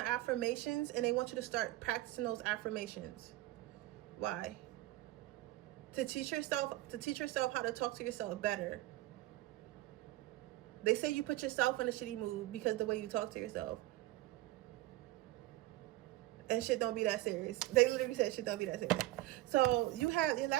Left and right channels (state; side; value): quieter; left; 17.3 dB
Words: affirmations, and they want you to start practicing those affirmations. Why? To teach yourself how to talk to yourself better. They say you put yourself in a shitty mood because the way you talk to yourself. And shit don't be that serious. They literally said shit don't be that serious. So you have, your